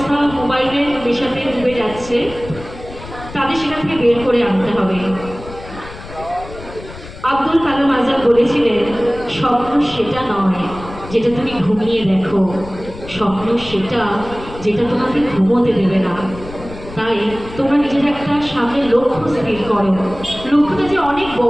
মোবাইলের নেশাতে ডুবে যাচ্ছে, তাদের সেখান থেকে বের করে আনতে হবে। আব্দুল কালাম আজাদ বলেছিলেন, স্বপ্ন সেটা নয় যেটা তুমি ঘুমিয়ে দেখো, স্বপ্ন সেটা যেটা তোমাকে ঘুমোতে দেবে না। তাই তোমরা নিজের একটা সামনে লক্ষ্য স্থির করো। লক্ষ্যটা যে অনেক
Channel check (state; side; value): noise; left; rumble, 15 dB below the sound